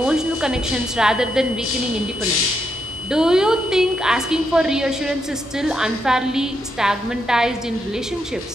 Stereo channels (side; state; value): both; normal; correlation 0.80